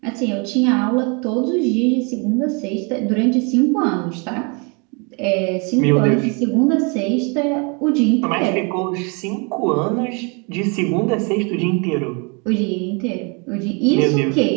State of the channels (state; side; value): quieter; left; 33.0 dB